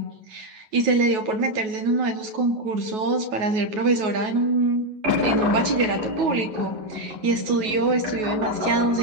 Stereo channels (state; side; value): late; left; 9.3 ms